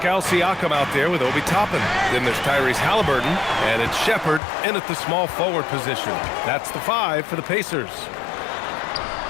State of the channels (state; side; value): drops out; right; at 4.4 s